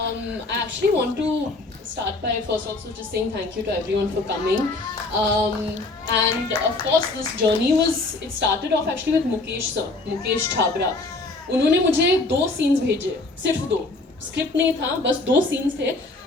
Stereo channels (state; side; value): quieter; right; 3.2 dB